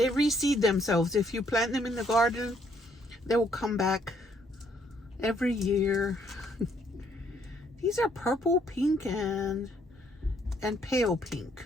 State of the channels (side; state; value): both; normal; correlation 0.68